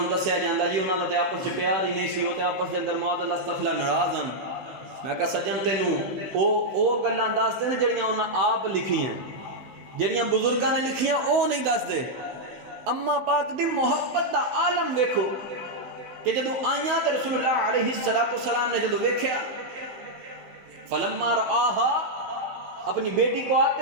دسیا جاندا جی انہاں دا تے آپس وچ پیار ہی نہیں سی، او تے آپس دے اندر معاذ اللہ استغفر ناراض ہن۔ میں کہا سجن تینوں او گلاں دس دے نے جڑیاں انہاں آپ لکھیاں، جڑیاں بزرگاں نے لکھیاں او نہیں دس دے۔ اما پاک دی محبت دا عالم ویکھو کہ جدوں آئیاں تے رسول اللہ علیہ السلام نے جدوں ویکھیا فلما رآہا اپنی بیٹی کو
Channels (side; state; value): left; late; 15 ms